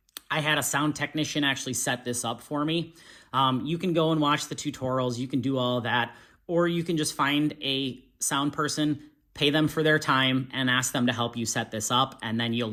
I had a sound technician actually set this up for me. You can go and watch the tutorials. You can do all of that, or you can just find a sound person, pay them for their time, and ask them to help you set this up, and then you'll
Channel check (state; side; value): identical; both; correlation 1.00